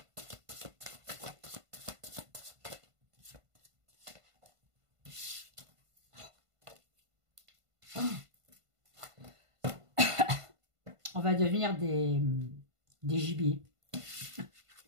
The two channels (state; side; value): late; left; 1.5 ms